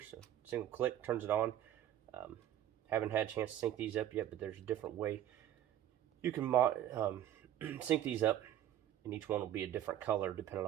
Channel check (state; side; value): quieter; left; 11.6 dB